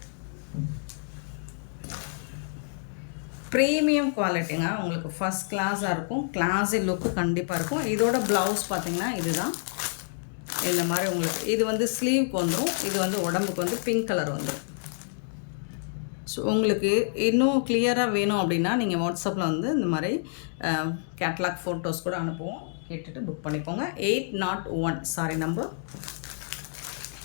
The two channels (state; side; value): silent; right; digital silence